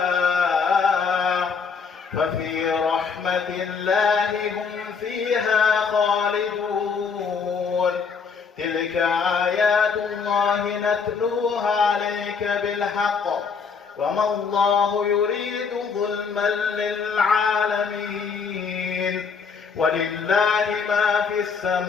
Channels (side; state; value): right; quieter; 5.6 dB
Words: هم فيها خالدون تلك آيات الله نتلوها عليك بالحق وما الله يريد ظلما للعالمين ولله ما في